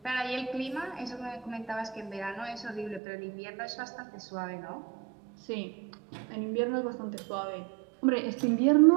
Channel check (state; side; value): drops out; left; at 3.0 s